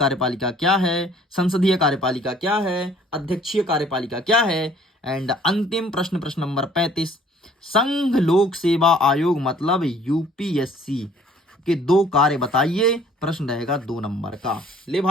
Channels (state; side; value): normal; both; correlation 0.56